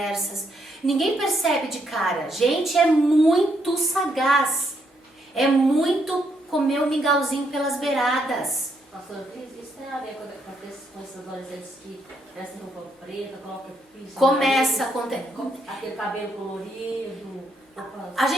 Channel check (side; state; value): both; normal; correlation 0.75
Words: Ninguém percebe de cara. Gente, é muito sagaz. É muito comer o mingauzinho pelas beiradas. Pastor, isso tem a ver quando acontece com esses adolescentes que vestem roupa preta, colocam piso. Começa a acontecer. Aquele cabelo colorido. A